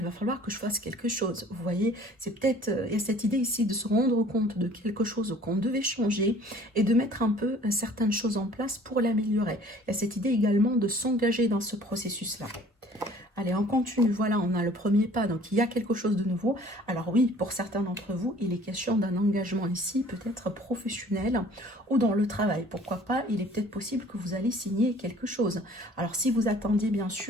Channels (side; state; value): both; normal; correlation 0.52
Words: va falloir que je fasse quelque chose, vous voyez, c'est peut-être, il y a cette idée ici de se rendre compte de quelque chose qu'on devait changer, et de mettre un peu certaines choses en place pour l'améliorer. Il y a cette idée également de s'engager dans ce processus-là. Allez, on continue. Voilà, on a le premier pas. Donc, il y a quelque chose de nouveau. Alors oui, pour certains d'entre vous, il est question d'un engagement ici, peut-être professionnel ou dans le travail. Pourquoi pas, il est peut-être possible que vous allez signer quelque chose. Alors, si vous attendiez bien